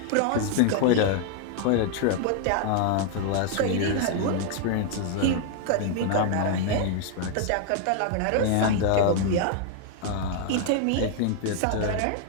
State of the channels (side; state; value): both; different; correlation 0.00